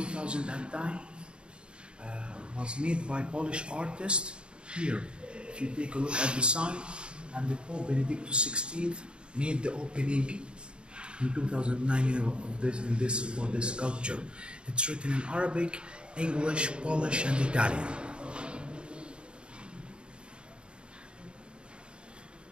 2009. Was made by Polish artists here. If you take a look at the sign, and the Pope Benedictus XVI made the opening in 2009 for this sculpture. It's written in Arabic, English, Polish, and Italian.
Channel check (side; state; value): left; late; 0.053 ms